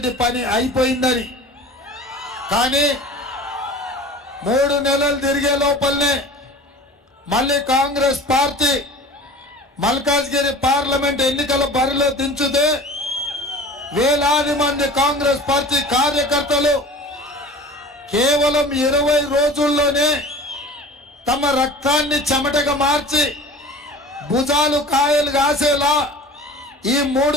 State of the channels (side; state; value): both; normal; correlation 0.40